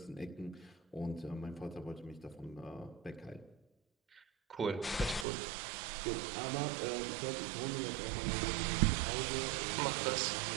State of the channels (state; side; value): drops out; left; at 5.2 s